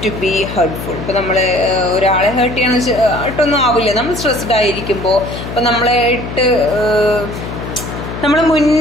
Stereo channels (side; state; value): left; noise; hum, 8 dB below the sound